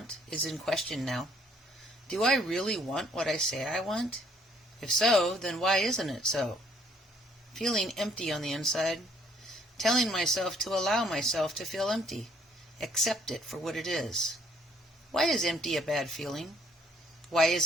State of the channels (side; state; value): both; normal; correlation 0.64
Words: is in question now. Do I really want what I say I want? If so, then why isn't it so? Feeling empty on the inside. Telling myself to allow myself to feel empty. Accept it for what it is. Why is empty a bad feeling? Why